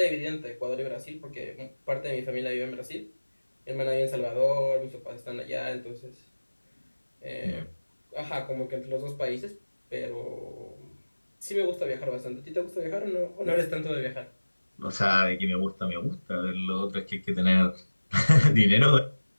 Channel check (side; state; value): both; inverted; correlation -1.00